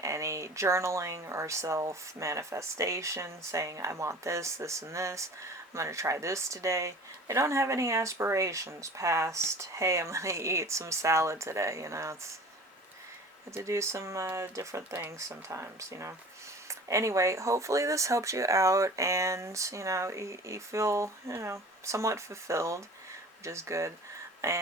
any journaling or self-manifestation, saying, I want this, this, and this. I'm going to try this today. They don't have any aspirations past, hey, I'm going to eat some salad today. It's to do some different things sometimes, Anyway, hopefully this helps you out and, you feel, somewhat fulfilled, which is good.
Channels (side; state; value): both; normal; correlation 0.42